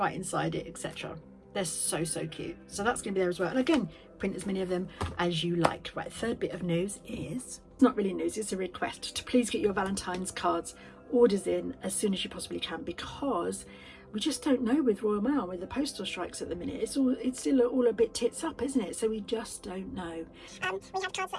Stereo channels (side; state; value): both; identical; correlation 1.00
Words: inside it, etc. They're so cute. So that's going to be there as well. And again, print as many of them as you like. Right, third bit of news is, it's not really news, it's a request to please get your Valentine's cards orders in as soon as you possibly can, because we just don't know with Royal Mail, with the postal strikes at the minute. It's still all a bit tits up, isn't it? So we just don't know. We have cards